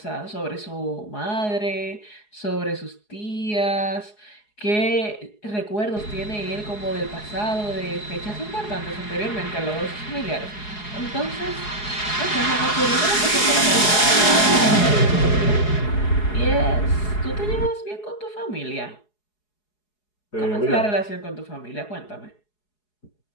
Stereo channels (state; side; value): late; right; 4.8 ms